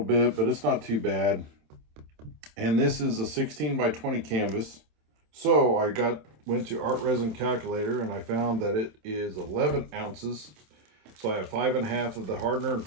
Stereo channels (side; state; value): left; late; 27 ms